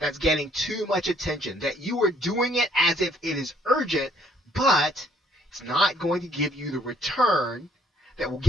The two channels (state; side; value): normal; both; correlation 0.65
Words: getting too much attention, that you are doing it as if it is urgent, but it's not going to give you the return that will